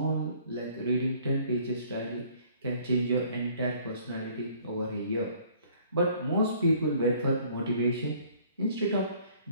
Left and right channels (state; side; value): inverted; both; correlation -0.57